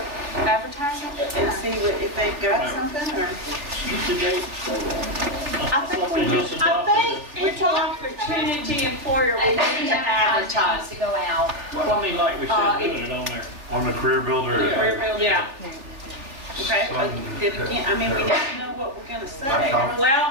advertising and see if they've got something, or? Get the date. I think we just just, I think equal opportunity employer, we And then need the to advertising advertise. needs to go out. Well, I mean, like we said, doing it on there. On the career builder. Yeah. Okay, but then again, I mean, we need to know what we're gonna say. Well,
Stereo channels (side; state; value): left; late; 3.4 ms